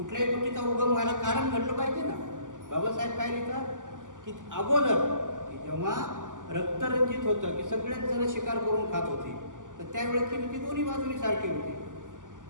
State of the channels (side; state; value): left; late; 0.87 ms